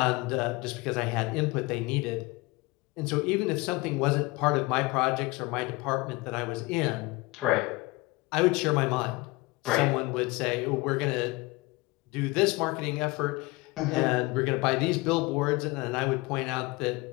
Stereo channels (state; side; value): quieter; right; 23.3 dB